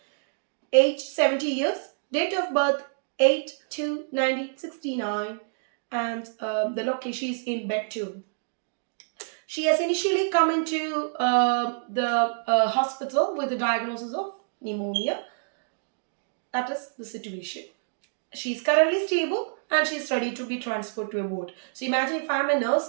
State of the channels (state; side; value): silent; left; digital silence